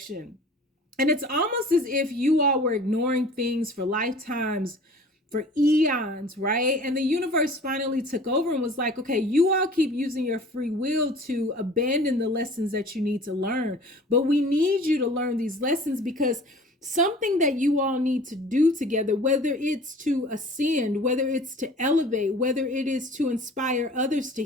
And it's almost as if you all were ignoring things for lifetimes, for eons, right? And the universe finally took over and was like, okay, you all keep using your free will to abandon the lessons that you need to learn. But we need you to learn these lessons because something that you all need to do together, whether it's to ascend, whether it's to elevate, whether it is to inspire others to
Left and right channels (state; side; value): normal; both; correlation 0.46